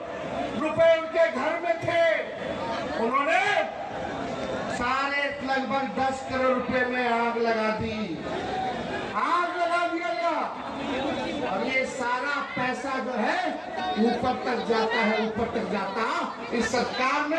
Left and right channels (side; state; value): both; identical; correlation 1.00